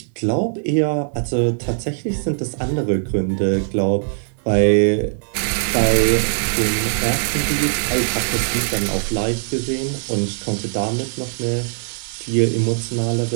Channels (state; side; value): silent; left; digital silence